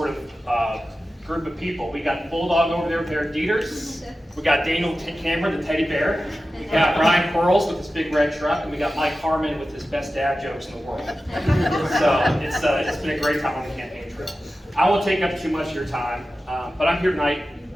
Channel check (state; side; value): normal; both; correlation 0.94